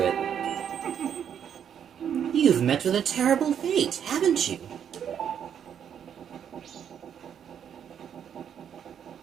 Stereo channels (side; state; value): left; quieter; 8.6 dB